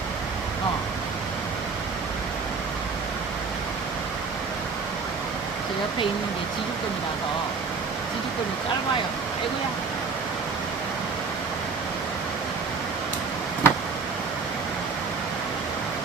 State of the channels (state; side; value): quieter; left; 4.9 dB